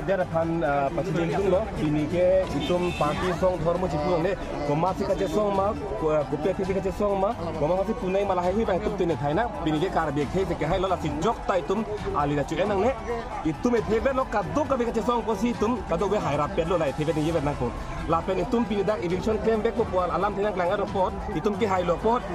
pan pasti itu loh bini ke itu parti song hormo cikung deh komasi kaca song mah kopi kaca song mah komasi punai malah hehi bah itu tuh thai nak bini ke karbi ke hai lo lah si jok ta itu ali dah cuci nang ne itu me thebe lo kado kabi kaca song posi itu kado be hai rapet lo lah thebe ni be nang ko lapen itu bini dak eviction claim be ko pual alam tinang kelangar report itu ke hai lo pot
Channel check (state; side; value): identical; both; correlation 1.00